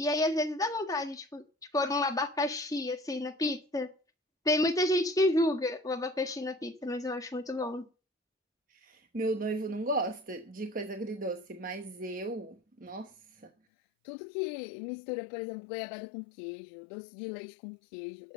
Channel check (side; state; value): right; drops out; at 13.5 s